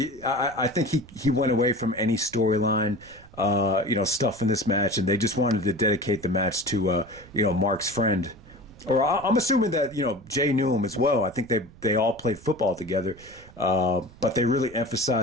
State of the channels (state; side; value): noise; right; rumble, 22 dB below the sound